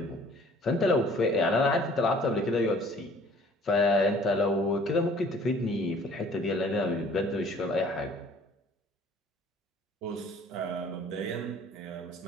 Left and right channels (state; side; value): normal; both; correlation 0.54